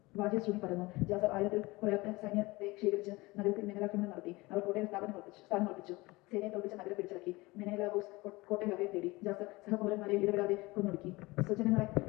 വാദ്യശ്രുതി പരന്നു. ജാസർ 1000-ൽ കുറയാത്ത സൈന്യത്തെ ശേഖരിച്ച് നഗരത്തിൽ മിന്നലാക്രമണം നടത്തി. അവർ കോട്ടയിൽ സ്ഥാനമുറപ്പിച്ചു. സേനയെ തോൽപ്പിച്ച നഗരം പിടിച്ചടക്കി. മെനേലാവൂസ് കോട്ടയിൽ അഭയം തേടി. ജാസർ സഹപൗരന്മാരെ ഇടപെടാതെ കൊന്നൊടുക്കി. സ്വജനങ്ങളെ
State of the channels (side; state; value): right; quieter; 22.1 dB